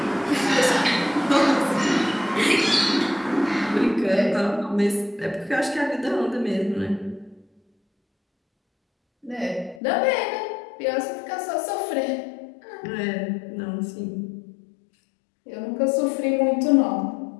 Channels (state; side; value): drops out; right; at 9.8 s